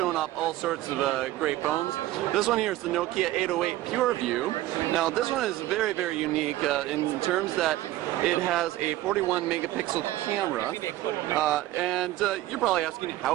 off all sorts of great phones. This one here is the Nokia 808 PureView. Now, this one is very, very unique in terms that it has a 41 megapixel camera, and you're probably asking,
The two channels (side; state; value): left; quieter; 15.6 dB